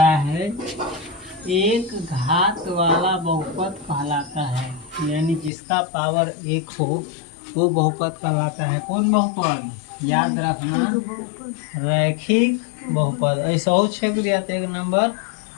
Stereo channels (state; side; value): drops out; right; at 5.5 s